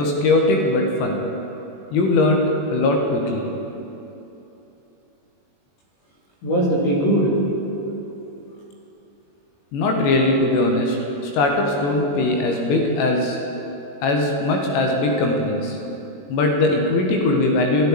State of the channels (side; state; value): right; late; 21 ms